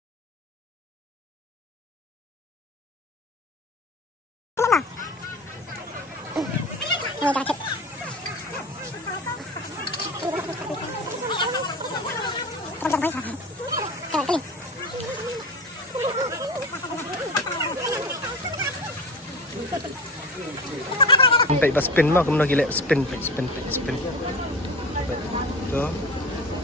Baik pas spin mah, kemudian gila spin. Tu.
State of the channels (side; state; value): both; normal; correlation 0.31